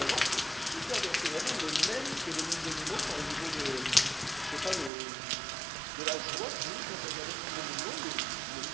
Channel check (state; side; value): drops out; left; at 4.9 s